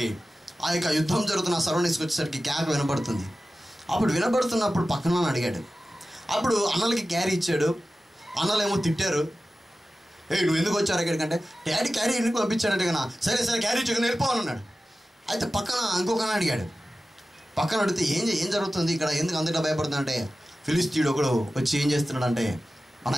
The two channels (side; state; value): both; normal; correlation 0.95